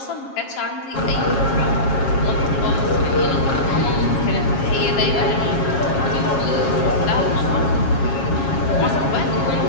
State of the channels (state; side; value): late; right; 7.4 ms